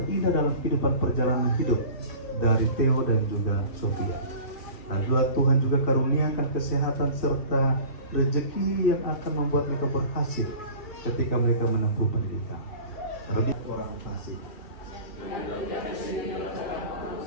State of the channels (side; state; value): right; late; 2.6 ms